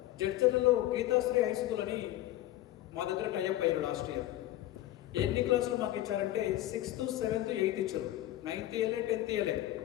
జడ్చర్లలో గీతాశ్రీ హై స్కూల్ అని మా దగ్గర టైఅప్ అయ్యారు లాస్ట్ ఇయర్. ఎన్ని క్లాసులు మాకు ఇచ్చారంటే 6th, 7th, 8th ఇచ్చారు, 9th ఇయర్లే, 10th ఇయర్లే.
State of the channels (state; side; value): quieter; right; 14.6 dB